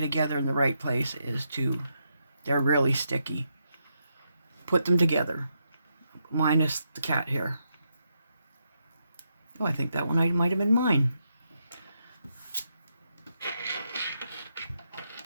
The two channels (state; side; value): inverted; both; correlation -0.81